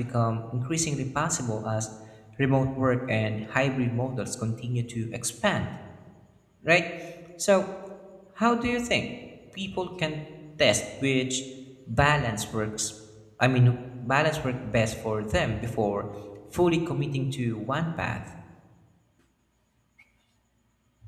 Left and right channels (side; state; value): both; identical; correlation 1.00